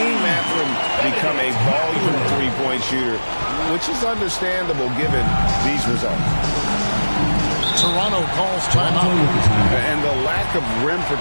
Mathurin become a volume three-point shooter, which is understandable given these results. Toronto calls timeout. And the lack of rim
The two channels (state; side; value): inverted; both; correlation -1.00